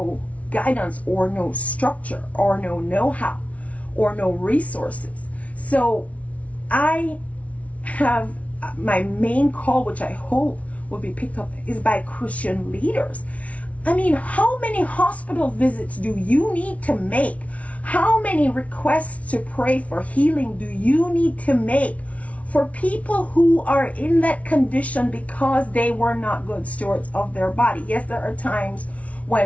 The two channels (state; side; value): late; right; 0.066 ms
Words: guidance or no structure or no know-how or no resources. So I have my main call, which I hope will be picked up, is by Christian leaders. I mean, how many hospital visits do you need to make? How many requests to pray for healing do you need to make for people who are in that condition because they were not good stewards of their body? Yes, there are times